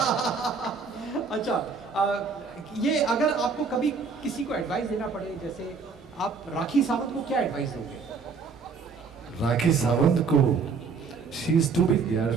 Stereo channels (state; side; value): quieter; left; 5.1 dB